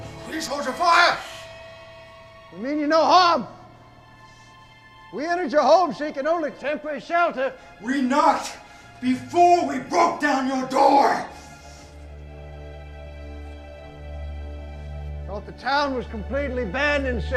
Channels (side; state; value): both; identical; correlation 1.00